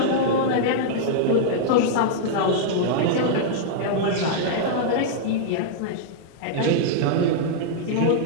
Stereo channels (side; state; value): both; different; correlation -0.01